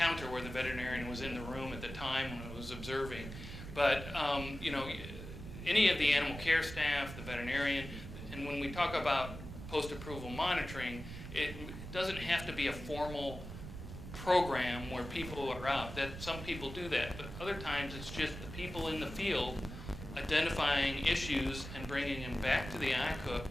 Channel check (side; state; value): right; noise; rumble, 10 dB below the sound